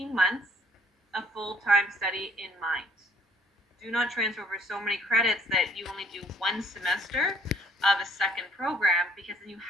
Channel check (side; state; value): both; normal; correlation 0.60